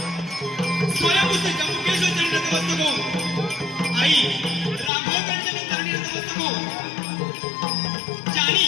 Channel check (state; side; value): drops out; right; at 4.9 s